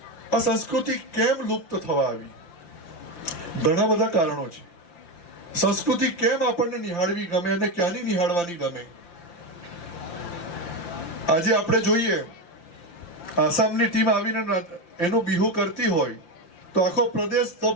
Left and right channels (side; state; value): right; late; 5.8 ms